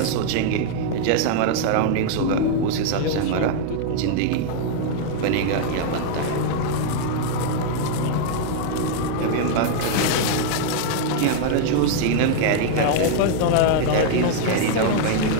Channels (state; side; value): different; both; correlation -0.01